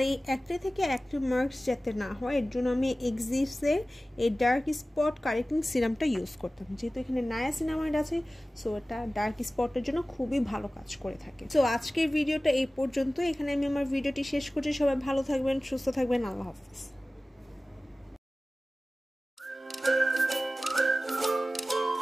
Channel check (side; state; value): both; normal; correlation 0.97